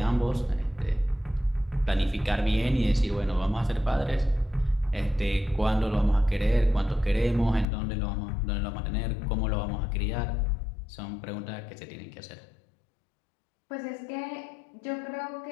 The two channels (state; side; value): drops out; right; at 7.7 s